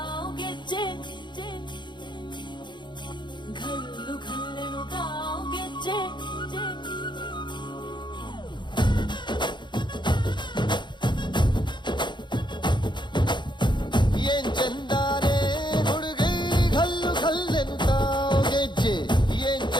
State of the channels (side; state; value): right; late; 0.22 ms